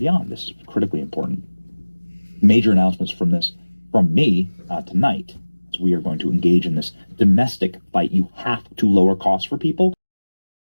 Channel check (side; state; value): both; inverted; correlation -1.00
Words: This is critically important. Major announcements from me tonight. We are going to engage in this domestic fight. You have to lower costs for people.